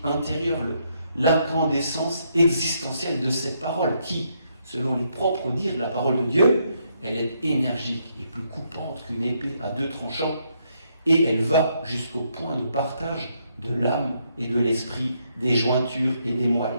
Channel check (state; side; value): inverted; both; correlation -0.75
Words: intérieure, l'incandescence existentielle de cette parole qui, selon les propres dires de la parole de Dieu, elle est énergique et plus coupante qu'une épée à deux tranchants, et elle va jusqu'au point de partage de l'âme et de l'esprit, des jointures et des